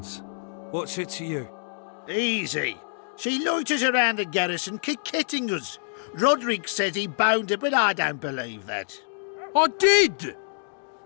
What's it to you? Easy. She loiters around the garrison kick-kitting us. Roderick says he bound her, but I don't believe that. I did!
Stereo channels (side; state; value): right; silent; digital silence